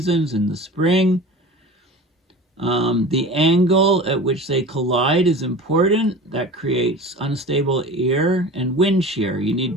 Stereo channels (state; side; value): normal; both; correlation 0.36